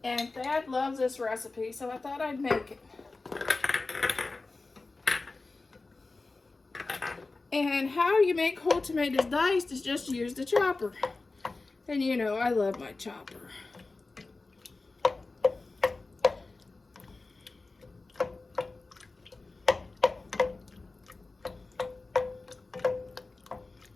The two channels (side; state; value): right; quieter; 3.5 dB